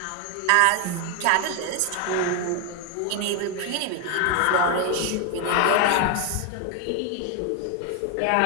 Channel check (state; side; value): different; both; correlation 0.01